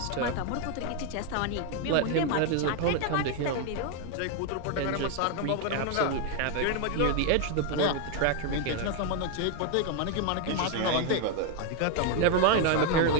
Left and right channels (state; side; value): different; both; correlation 0.01